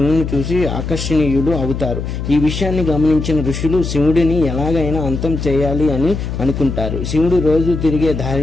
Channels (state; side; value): noise; left; hum, 5 dB below the sound